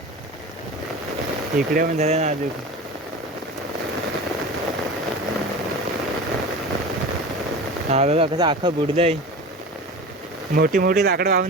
इकडे पण झालं ना अजून. हा बघा कसं अख्खं बुडलंय. मोठी मोठी लाकडं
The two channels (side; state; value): both; normal; correlation 0.32